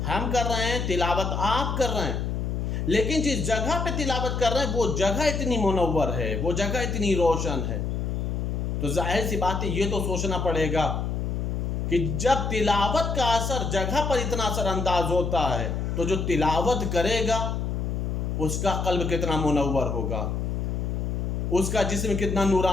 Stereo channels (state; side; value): noise; left; hum, 1 dB below the sound